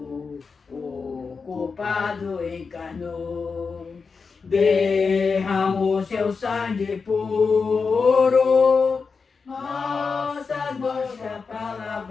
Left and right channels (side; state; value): right; quieter; 5.0 dB